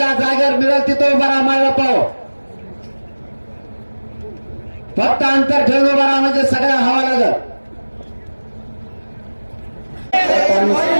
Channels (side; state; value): both; inverted; correlation -1.00